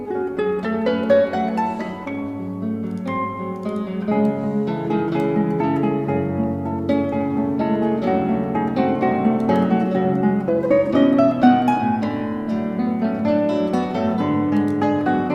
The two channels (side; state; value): both; identical; correlation 1.00